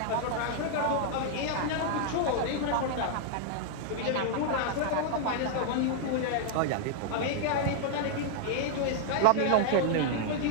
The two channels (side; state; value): both; different; correlation -0.01